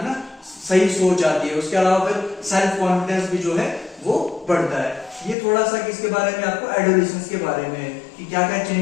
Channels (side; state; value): right; drops out; at 5.4 s